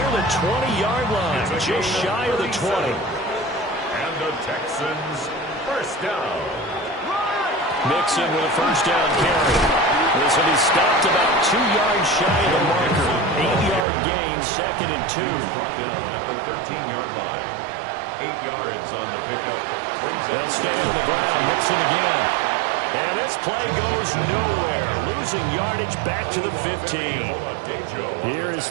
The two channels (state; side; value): drops out; left; at 13.9 s